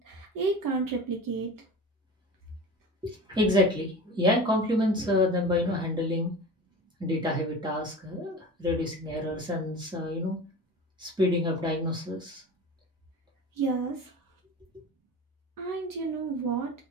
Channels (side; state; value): both; normal; correlation 0.34